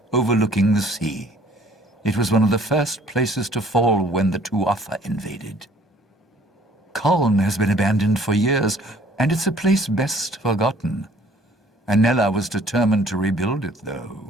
overlooking the sea. It was one of the first places to fall when the Tuatha invaded. Kuln has been abandoned for years, and it's a place best forgotten. Anela was determined to rebuild it,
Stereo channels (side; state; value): both; normal; correlation 0.56